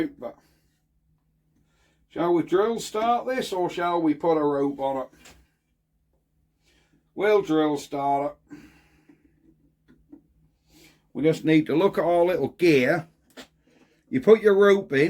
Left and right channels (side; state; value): both; identical; correlation 1.00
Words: but shall we drill start this or shall we put a rope on it? We'll drill start it. We just need to look at our little gear. You put your rope